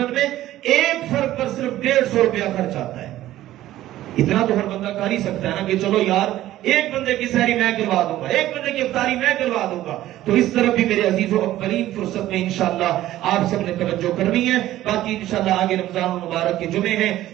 میں ایک فرد پر صرف 150 روپیہ خرچ آتا ہے. اتنا تو ہر بندہ کر ہی سکتا ہے نا کہ چلو یار ایک بندے کی سحری میں کروا دوں گا, ایک بندے کی افطاری میں کروا دوں گا. تو اس طرف بھی میرے عزیزوں اولین فرصت میں انشاءاللہ آپ سب نے توجہ کرنی ہے. باقی انشاءاللہ آگے رمضان المبارک کے جمعے ہیں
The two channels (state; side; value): quieter; left; 14.3 dB